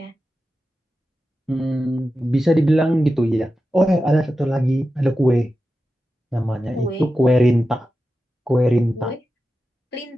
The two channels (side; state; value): both; normal; correlation 0.92